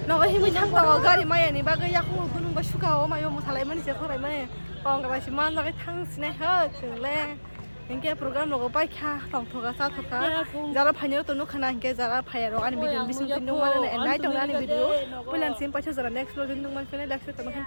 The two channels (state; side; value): inverted; both; correlation -1.00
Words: Nó hi mới thang tàu gari mai này ba cái yak không có nung ba suka mà yo một thằng mình sẽ không lại mà còn cái gì mà nó cái thang sini hết chừng le. Những cái program nó có bay kha, tổng thuộc cả sao thuộc cả. Giờ là phải nhớ tụi nó khả năng cái giờ là phải rồi anh video bisung tin đúng mà này em nói trong đó anh video. Bây giờ xem phải cho giờ là next video tin đúng mà phải next video tụi mình khen